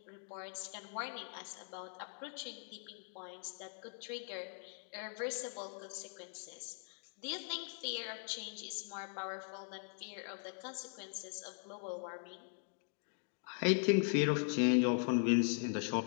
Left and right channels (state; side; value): silent; right; 51 dB below the other